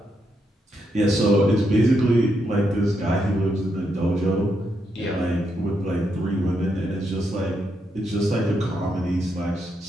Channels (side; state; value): both; normal; correlation 0.80